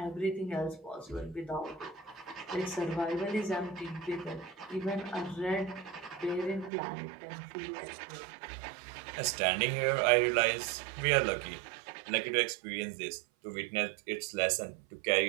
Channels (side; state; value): left; drops out; at 6.7 s